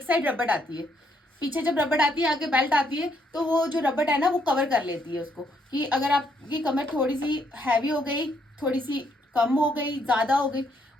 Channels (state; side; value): normal; both; correlation 0.72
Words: साइड रबड़ आती है, पीछे जब रबड़ आती है आगे बेल्ट आती है, तो वो जो रबड़ है ना वो कवर कर लेती है उसको, कि अगर आपकी कमर थोड़ी सी हैवी हो गई, थोड़ी सी कम हो गई, ज्यादा हो गई,